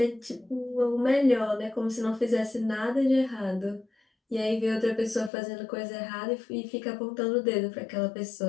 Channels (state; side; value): drops out; right; at 5.3 s